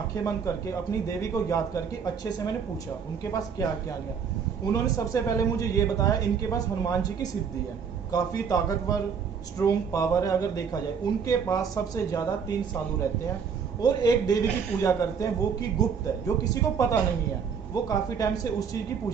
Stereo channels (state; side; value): quieter; left; 6.6 dB